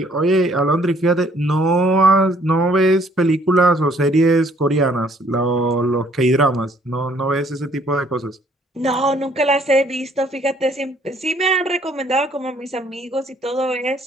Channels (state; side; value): normal; both; correlation 0.62